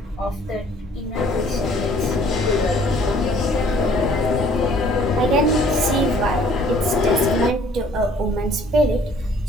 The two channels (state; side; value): normal; both; correlation 0.57